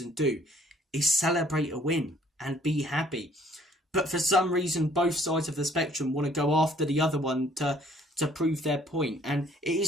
do is celebrate a win and be happy. But for some reason, both sides of the spectrum want to go after the other one to prove their point. And it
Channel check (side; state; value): both; normal; correlation 0.60